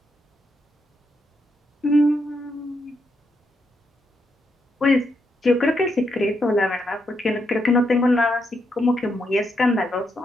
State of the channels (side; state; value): both; normal; correlation 0.80